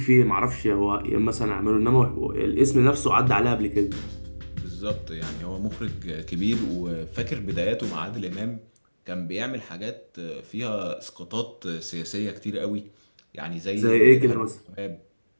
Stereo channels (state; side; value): inverted; both; correlation -1.00